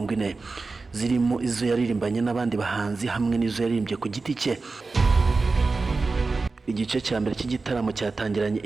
zirimo izo yaririmbanye n'abandi bahanzi hamwe n'izo yaririmbye ku giti cye. Igice cya mbere cy'igitaramo cyatangiranye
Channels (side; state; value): left; quieter; 3.9 dB